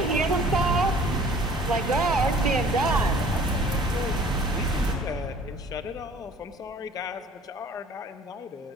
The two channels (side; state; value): both; normal; correlation 0.51